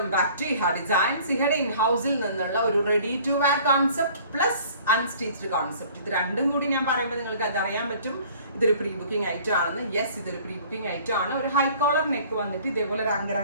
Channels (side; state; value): both; inverted; correlation -0.51